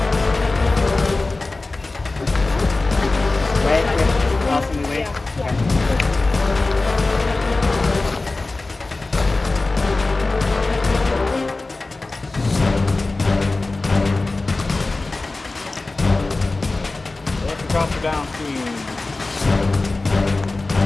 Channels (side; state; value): right; quieter; 3.3 dB